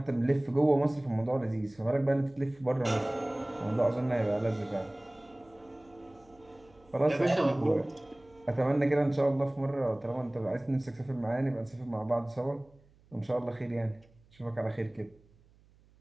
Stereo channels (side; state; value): right; noise; hum, 30 dB below the sound